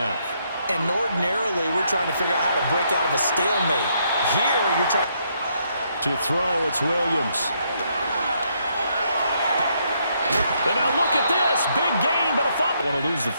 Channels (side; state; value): both; inverted; correlation -0.74